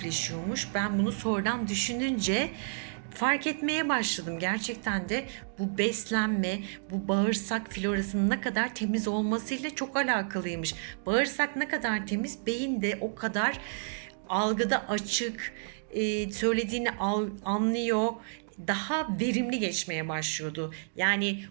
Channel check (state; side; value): silent; left; digital silence